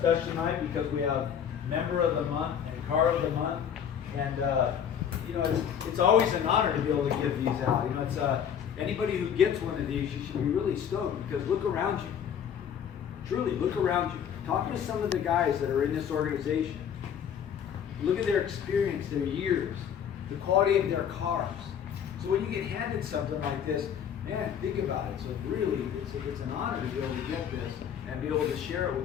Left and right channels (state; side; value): quieter; right; 8.5 dB